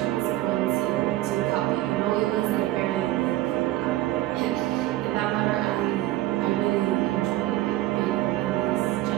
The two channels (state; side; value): quieter; left; 15.9 dB